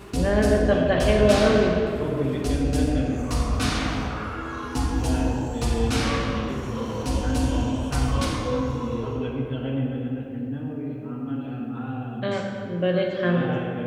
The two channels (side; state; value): both; identical; correlation 1.00